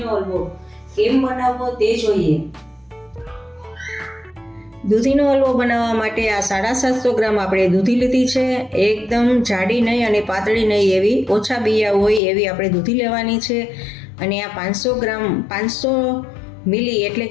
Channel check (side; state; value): right; drops out; at 12.2 s